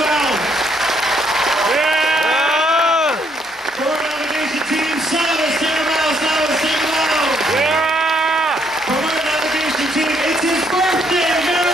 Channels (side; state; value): both; normal; correlation 0.71